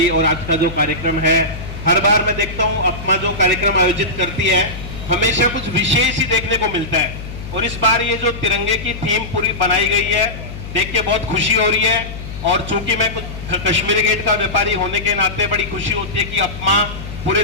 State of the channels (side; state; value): left; noise; hum, 10 dB below the sound